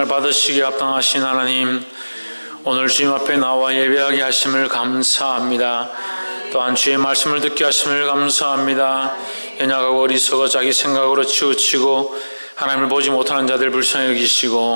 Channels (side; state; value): both; inverted; correlation -1.00